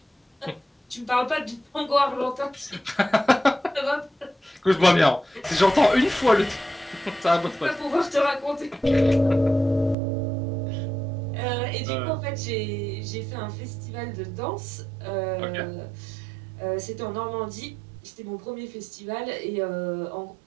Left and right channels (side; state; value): left; drops out; at 10.0 s